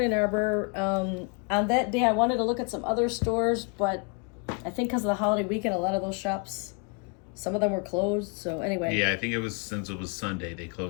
Ann Arbor. On that day, I wanted to look at some other stores, but I think because of the holiday weekend, a lot of those shops, some of them were closed. So anyway. Yeah, I think it was, since it was Sunday, they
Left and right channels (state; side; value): quieter; right; 34.5 dB